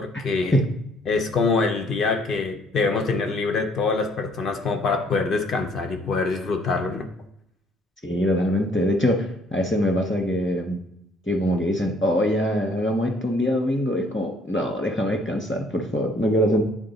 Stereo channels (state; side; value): normal; both; correlation 0.62